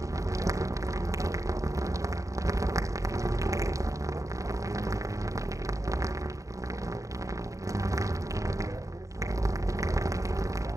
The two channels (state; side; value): late; left; 0.16 ms